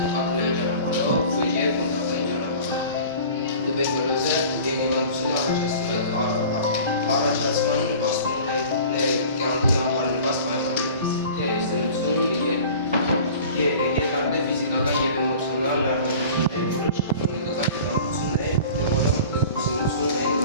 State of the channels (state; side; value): inverted; both; correlation -0.42